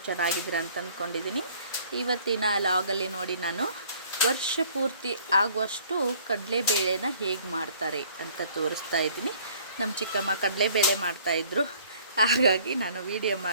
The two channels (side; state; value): both; inverted; correlation -0.56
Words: ಚೆನ್ನಾಗಿದ್ದೀರಾ ಅಂತ ಅಂದ್ಕೊಂಡಿದ್ದೀನಿ. ಇವತ್ತಿನ ಲಾಗಲ್ಲಿ ನೋಡಿ, ನಾನು ವರ್ಷ ಪೂರ್ತಿ ಆಗುವಷ್ಟು ಕಡಲೆಬೇಳೆನ ಹೇಗೆ ಮಾಡ್ತಾರೆ ಅಂತ ತೋರಿಸ್ತಾ ಇದ್ದೀನಿ. ನಮ್ಮ ಚಿಕ್ಕಮ್ಮ ಕಡಲೆಬೇಳೆ ಮಾಡ್ತಾಯಿದ್ರು, ಹಾಗಾಗಿ ನಾನು ವಿಡಿಯೋ